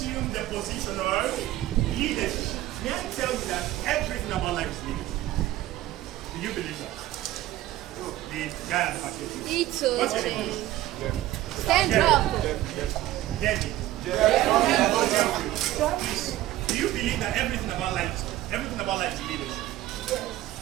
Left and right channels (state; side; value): quieter; left; 15.0 dB